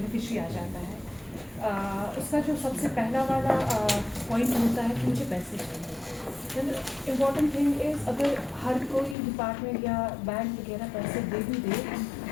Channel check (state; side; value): drops out; right; at 9.2 s